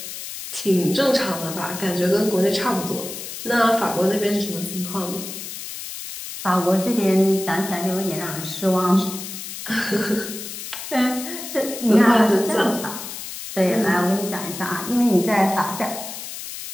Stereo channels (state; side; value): noise; left; hiss, 9 dB below the sound